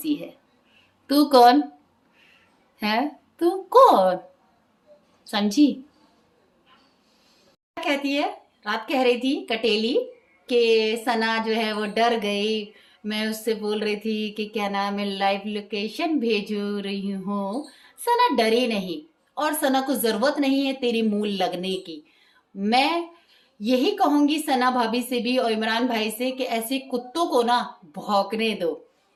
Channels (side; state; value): both; identical; correlation 1.00